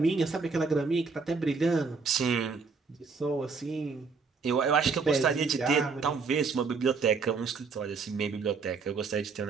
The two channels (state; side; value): quieter; left; 4.8 dB